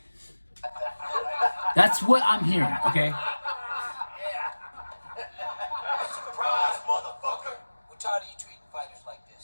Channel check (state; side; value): inverted; both; correlation -1.00